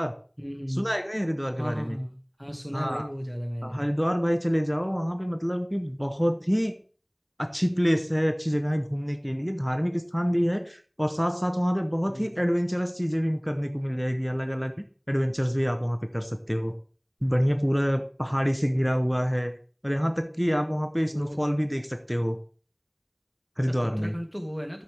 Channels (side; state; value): both; identical; correlation 1.00